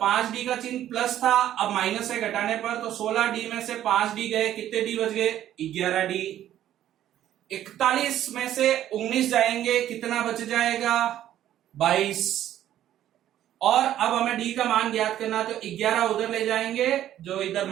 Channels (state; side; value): quieter; left; 11.9 dB